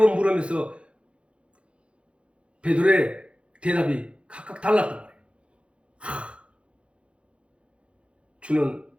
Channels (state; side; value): late; left; 0.059 ms